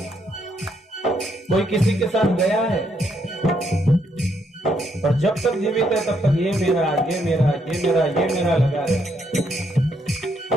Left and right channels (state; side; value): normal; both; correlation 0.74